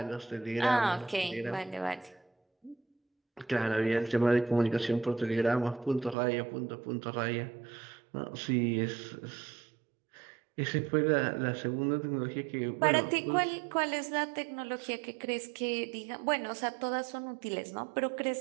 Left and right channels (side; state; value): left; drops out; at 6.2 s